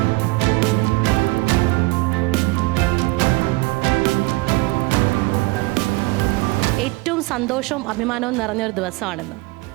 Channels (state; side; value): quieter; left; 23.4 dB